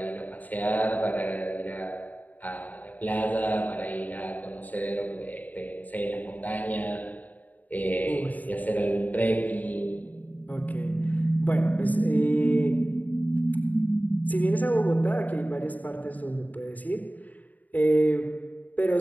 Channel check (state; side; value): late; right; 0.078 ms